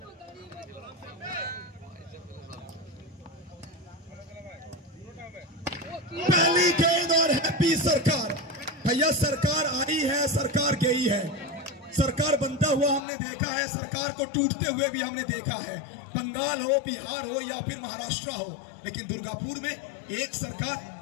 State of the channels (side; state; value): right; drops out; at 13.1 s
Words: पहली गेंद और हैप्पी सरकार। भैया सरकार आई है, सरकार गई है। सरकार बनता हुआ हमने देखा है, सरकार को टूटते हुए भी हमने देखा है। बंगाल हो, बिहार हो या फिर महाराष्ट्र हो, लेकिन दुर्गापुर में एक